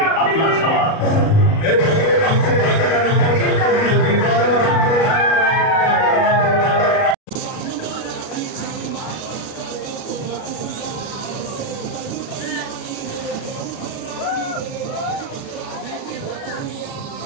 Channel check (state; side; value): late; right; 37 ms